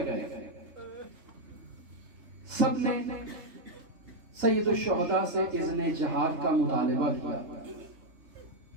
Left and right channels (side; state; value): left; late; 3.3 ms